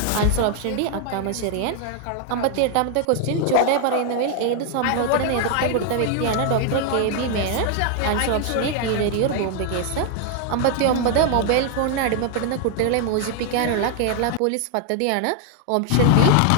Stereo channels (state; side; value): different; both; correlation 0.00